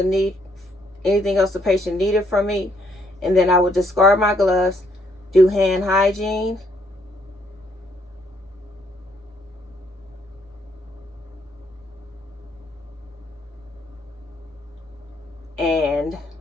need, anything else the patient needed from me, and then I would discard my gloves, do hand hygiene, and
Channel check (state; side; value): normal; both; correlation 0.70